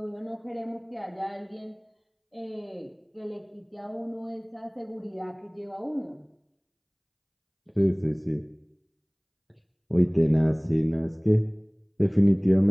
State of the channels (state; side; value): identical; both; correlation 1.00